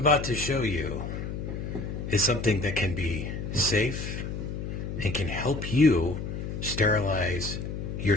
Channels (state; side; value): noise; left; hum, 5 dB below the sound